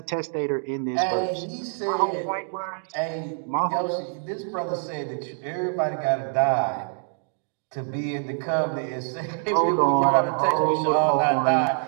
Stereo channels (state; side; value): silent; left; 62 dB below the other